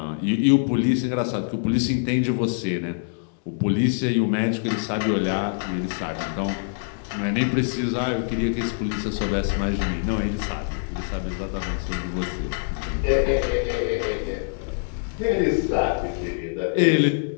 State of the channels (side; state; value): right; silent; 62 dB below the other